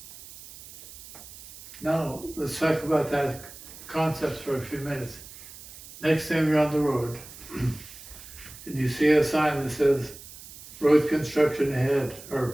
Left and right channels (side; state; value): right; noise; hiss, 17 dB below the sound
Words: Now, let's talk about that concept for a few minutes. Next time you're on the road, and you see a sign that says, road construction ahead,